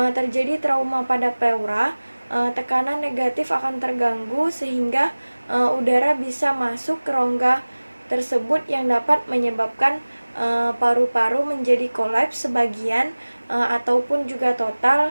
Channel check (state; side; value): inverted; both; correlation -1.00